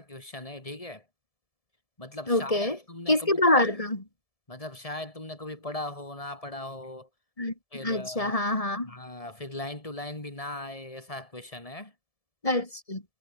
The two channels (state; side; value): late; right; 1.7 ms